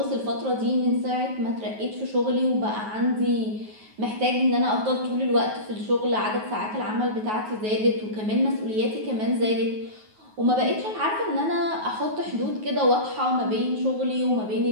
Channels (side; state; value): left; late; 9.4 ms